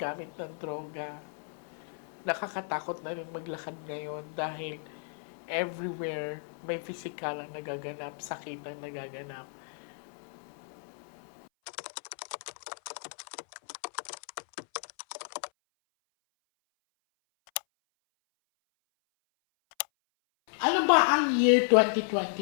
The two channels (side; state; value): right; silent; 56 dB below the other